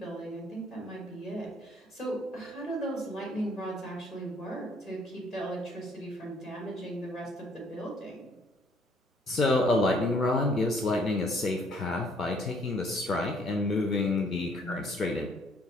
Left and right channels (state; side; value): normal; both; correlation 0.63